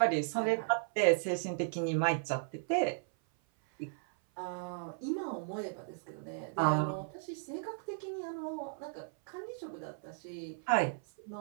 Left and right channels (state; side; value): silent; left; 54 dB below the other